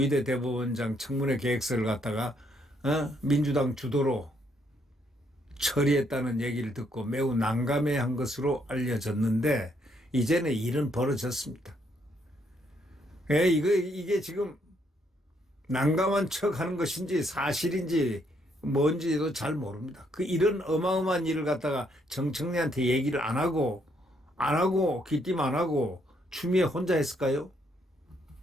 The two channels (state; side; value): normal; both; correlation 0.72